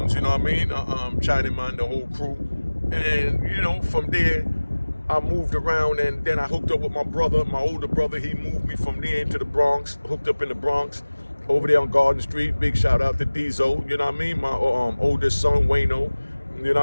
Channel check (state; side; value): inverted; both; correlation -1.00